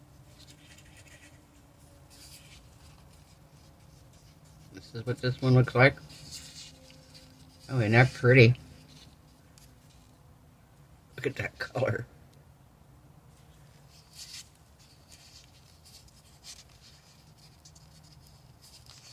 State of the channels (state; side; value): identical; both; correlation 1.00